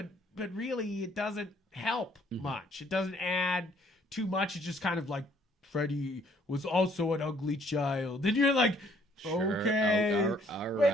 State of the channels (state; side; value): normal; both; correlation 0.63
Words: really it doesn't help much. It doesn't add too much. It's just kind of like, Freddie was also an ugly child, and you're like, Sure. Okay. All